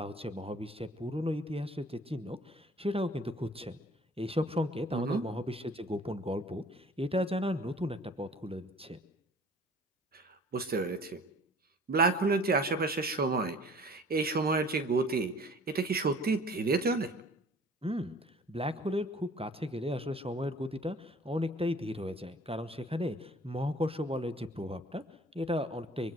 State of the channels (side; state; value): both; normal; correlation 0.49